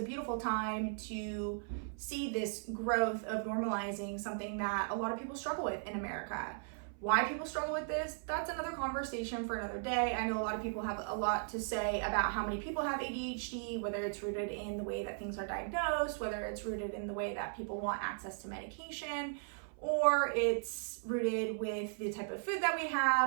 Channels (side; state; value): left; silent; 53 dB below the other